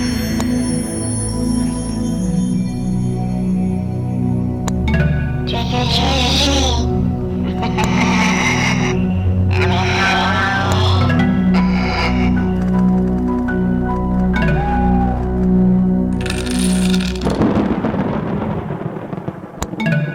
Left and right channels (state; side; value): identical; both; correlation 1.00